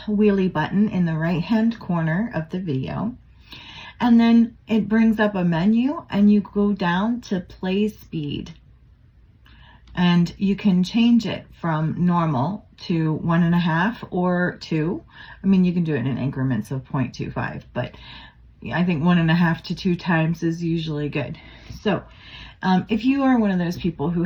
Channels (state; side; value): identical; both; correlation 1.00